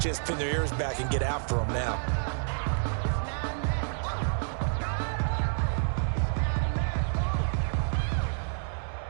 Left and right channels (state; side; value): silent; left; digital silence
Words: to just pin their ears back and get after them now.